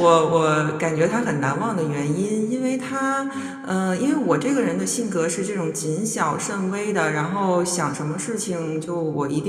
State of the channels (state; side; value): identical; both; correlation 1.00